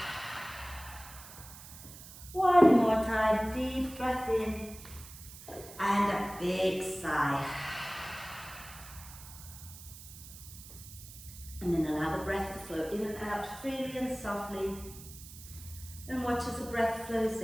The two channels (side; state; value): right; noise; hiss, 16 dB below the sound